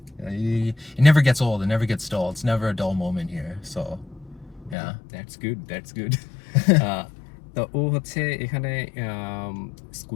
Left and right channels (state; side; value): drops out; right; at 4.8 s